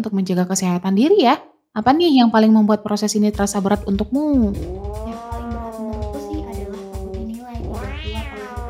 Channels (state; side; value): identical; both; correlation 1.00